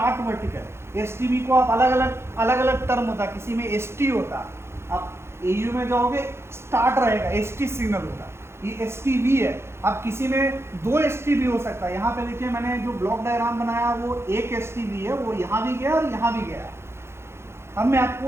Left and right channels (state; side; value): late; left; 0.12 ms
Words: वर्टिकल। STB को आप अलग अलग टर्म होता है, किसी में ST होता है, आप AU में जाओगे स्टार्ट रहेगा, ST सिग्नल होगा, ये STB है। अब किसी में 2 STB हो सकता है, यहाँ पे देखिए मैंने जो ब्लॉक डायग्राम बनाया वो एक STB है, वो यहाँ भी गया और यहाँ भी गया। अब मैं